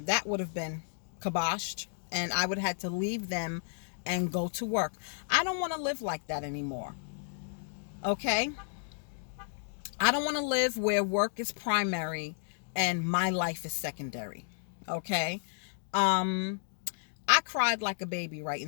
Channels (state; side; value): silent; right; digital silence